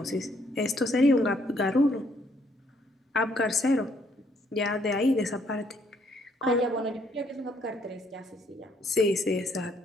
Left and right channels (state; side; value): normal; both; correlation 0.68